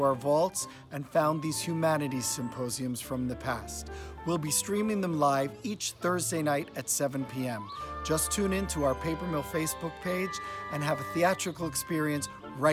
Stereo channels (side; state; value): both; identical; correlation 1.00